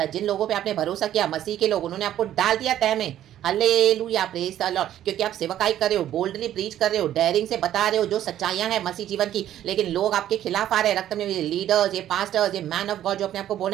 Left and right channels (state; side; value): quieter; left; 11.9 dB